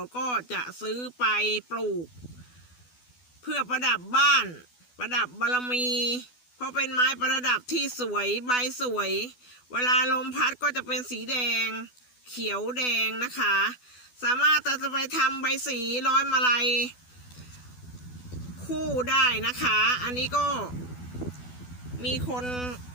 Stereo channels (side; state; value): right; late; 12 ms